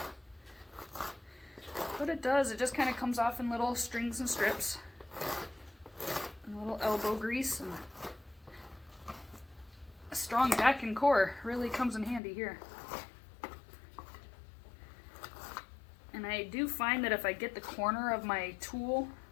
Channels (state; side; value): drops out; right; at 12.2 s